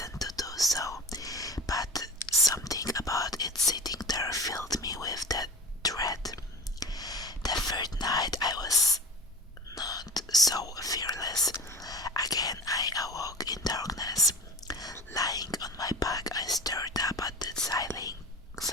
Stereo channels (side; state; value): both; normal; correlation 0.34